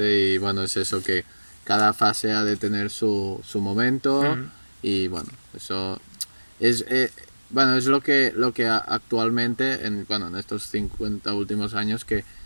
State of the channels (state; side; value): inverted; both; correlation -1.00